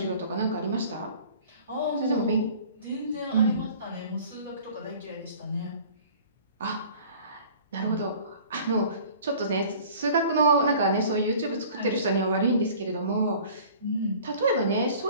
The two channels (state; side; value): inverted; both; correlation -0.47